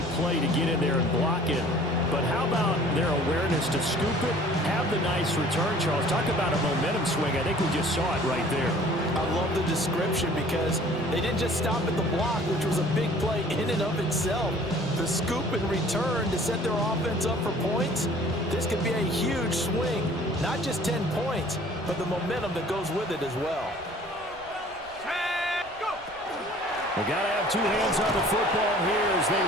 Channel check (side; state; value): right; noise; rumble, 24 dB below the sound